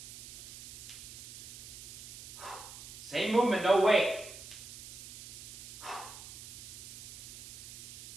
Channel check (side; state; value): right; noise; hiss, 13 dB below the sound